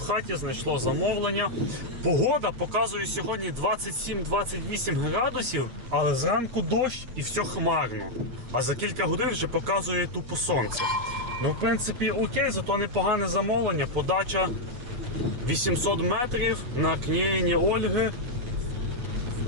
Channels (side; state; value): left; late; 8.0 ms